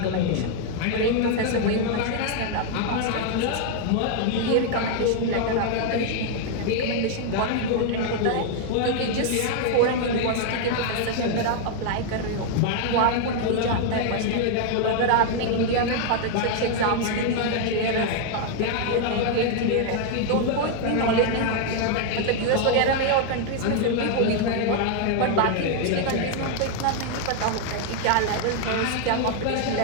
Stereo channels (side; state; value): both; different; correlation 0.00